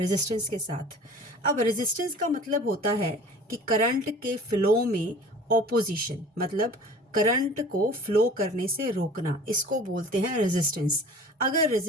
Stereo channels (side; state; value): both; normal; correlation 0.44